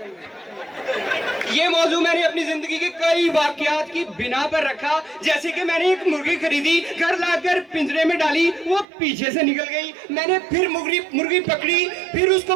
ये मौजू मैंने अपनी जिंदगी के कई वाकयात की बिना पर रखा। जैसे कि मैंने एक मुर्गी खरीदी, घर लाकर पिंजरे में डाली, वो पीछे से निकल गई। मैंने फिर मुर्गी पकड़ी, फिर उसको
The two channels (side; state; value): left; drops out; at 8.8 s